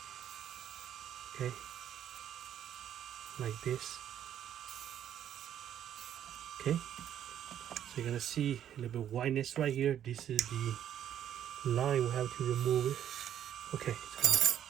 Okay, like this. Okay, so you're gonna see a little bit of whiteness right here. This is the line we have to remove it. Okay, it's gone.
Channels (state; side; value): quieter; left; 10.3 dB